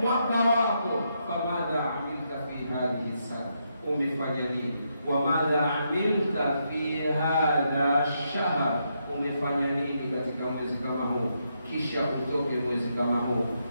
wako. Famadha amilta fi hadhihi sana, umefanya nini? Wamadha amilta fi hadha shahr, umefanya nini katika mwezi kama huu? Kisha utoke mwezi kama huu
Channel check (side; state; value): both; inverted; correlation -0.80